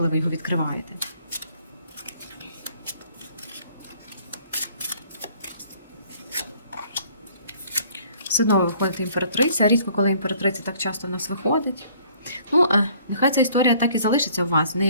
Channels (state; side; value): inverted; both; correlation -0.58